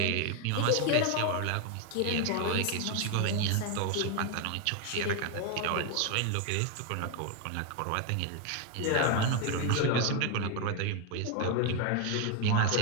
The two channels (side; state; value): both; different; correlation 0.01